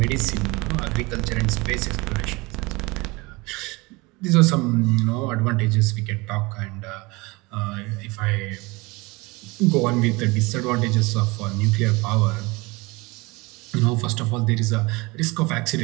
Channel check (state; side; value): quieter; left; 24.3 dB